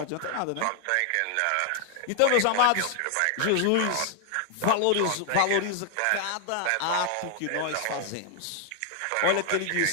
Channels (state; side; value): different; both; correlation 0.00